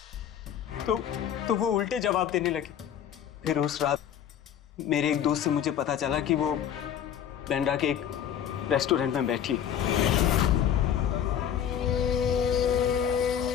वो उल्टे जवाब देने लगी। फिर उस रात मेरे एक दोस्त से मुझे पता चला कि वो बांद्रा के एक रेस्टोरेंट में बैठी है।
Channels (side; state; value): right; quieter; 9.3 dB